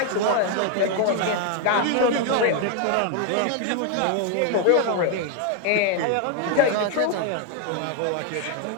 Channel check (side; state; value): both; different; correlation 0.01